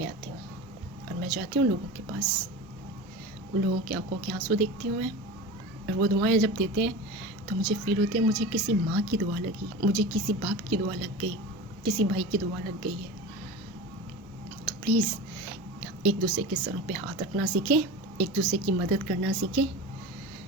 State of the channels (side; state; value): both; normal; correlation 0.31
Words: آتی ہوں. اور میں جاتی ہوں لوگوں کے پاس, ان لوگوں کی آنکھوں کے آنسو دیکھتی ہوں میں. اور وہ دعائیں جب دیتے ہیں تو مجھے فیل ہوتے ہیں مجھے کسی ماں کی دعا لگی, مجھے کسی باپ کی دعا لگ گئی, کسی بھائی کی دعا لگ گئی ہے. تو پلیز ایک دوسرے کے سروں پہ ہاتھ رکھنا سیکھیں, ایک دوسرے کی مدد کرنا سیکھیں,